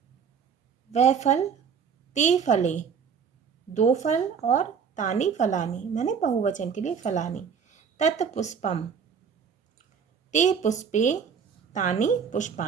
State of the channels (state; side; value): quieter; left; 6.7 dB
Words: वह फल, ते फले, दो फल, और तानि फलानि मैंने बहुवचन के लिए फलानि। तत्पुष्पम, ते पुष्पे, तानि